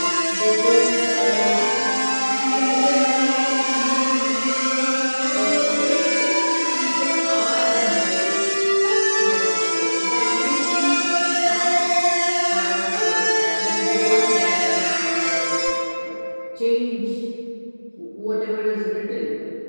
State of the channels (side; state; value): both; inverted; correlation -1.00